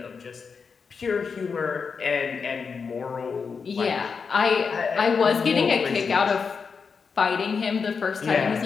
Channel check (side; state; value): right; quieter; 5.5 dB